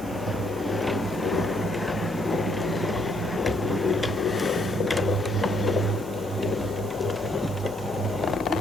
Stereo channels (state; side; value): noise; left; hum, 21 dB below the sound